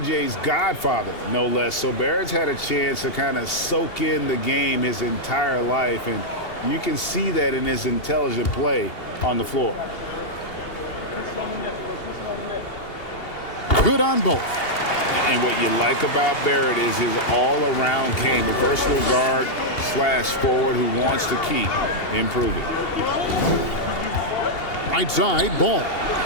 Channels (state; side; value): late; right; 2.8 ms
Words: godfather, no less. So Barrett's had a chance to kind of soak in the game his entire life, and you can see that in his intelligent play on the floor. Good on both. And what you like about Barrett is his all-around game, a versatile guard / forward who wants to keep improving. Right side, Ball.